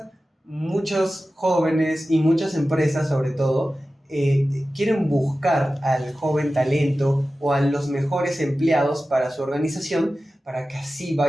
muchos jóvenes y muchas empresas, sobre todo, quieren buscar al joven talento o a los mejores empleados para su organización para que así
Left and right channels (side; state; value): both; normal; correlation 0.95